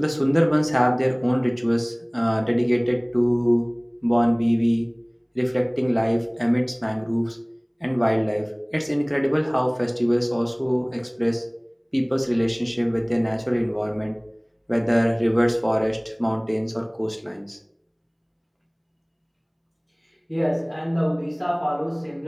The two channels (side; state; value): both; identical; correlation 1.00